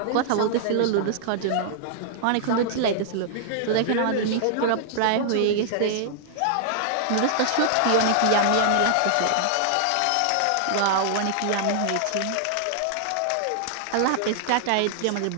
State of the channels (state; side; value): different; both; correlation -0.01